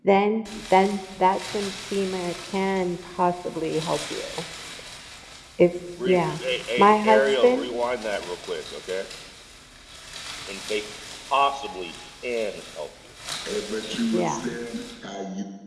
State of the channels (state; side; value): identical; both; correlation 1.00